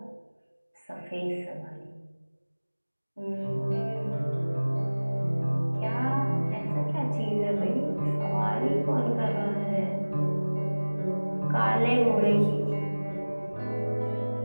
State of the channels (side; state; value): both; inverted; correlation -1.00